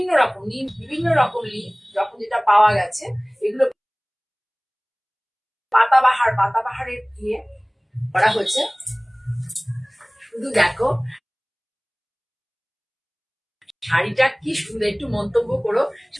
রকম নিম, বিভিন্ন রকম লিফ যখন যেটা পাওয়া গেছে, এগুলো পাতাবাহারের দিয়ে করা হচ্ছে। শুধু দেখো শাড়িটা কি সুন্দর, একটু মন্তব্য করো।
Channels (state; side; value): identical; both; correlation 1.00